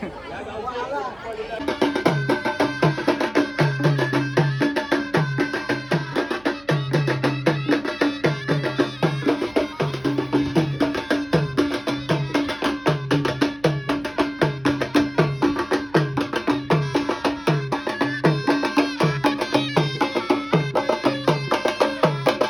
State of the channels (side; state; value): right; noise; hum, 27 dB below the sound